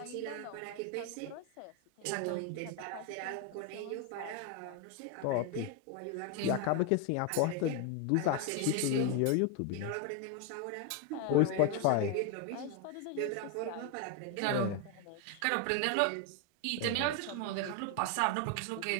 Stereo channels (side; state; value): both; different; correlation 0.01